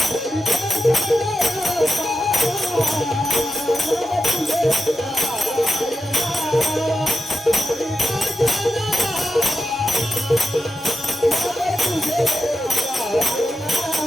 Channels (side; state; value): both; normal; correlation 0.90